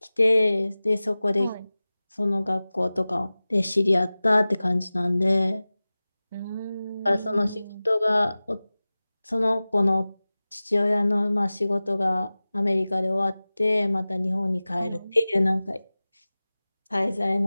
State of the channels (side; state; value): both; inverted; correlation -0.98